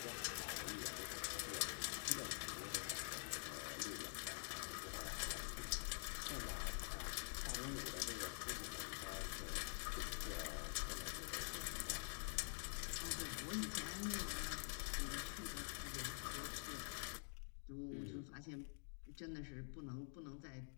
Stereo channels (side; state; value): right; silent; digital silence